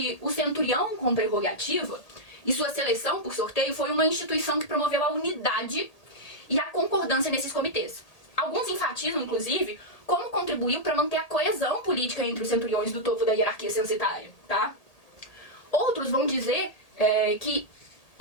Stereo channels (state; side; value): late; right; 1.8 ms